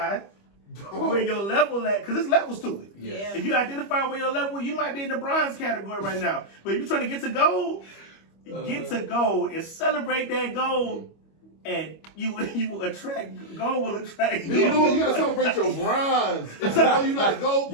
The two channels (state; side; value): late; right; 25 ms